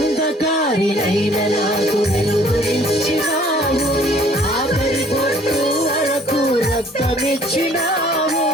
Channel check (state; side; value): normal; both; correlation 0.57